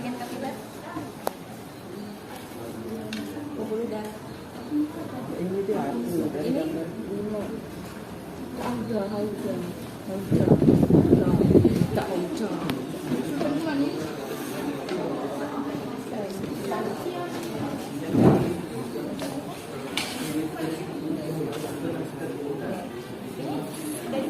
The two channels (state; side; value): identical; both; correlation 1.00